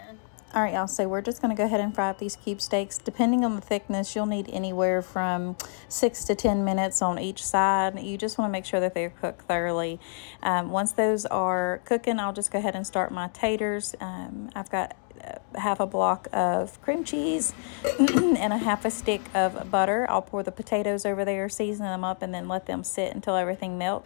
All right, y'all, so we're just going to go ahead and fry up these cube steaks. Depending on the thickness, you'll need anywhere from 6 to 10 minutes on each side. You just want to make sure that they're cooked thoroughly. Once those are cooking, I'll just go ahead and start my taters. I've got half a block of cream cheese and a half a stick of butter. I'll pour the potatoes over there, season them up, and then let them sit until everything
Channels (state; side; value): silent; right; 60 dB below the other